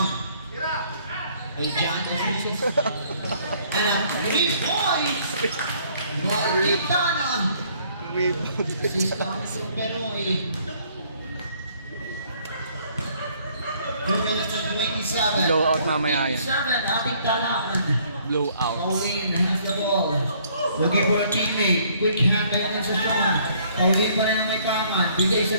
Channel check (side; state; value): both; inverted; correlation -0.62